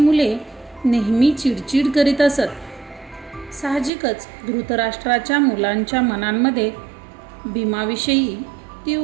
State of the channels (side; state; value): left; drops out; at 3.9 s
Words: नेहमी चिडचिड करीत असत. साहजिकच धृतराष्ट्राच्या मुलांच्या मनांमध्ये भीमाविषयी